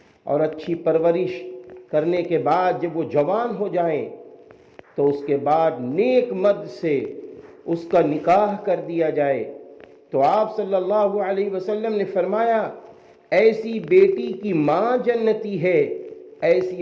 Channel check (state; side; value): identical; both; correlation 1.00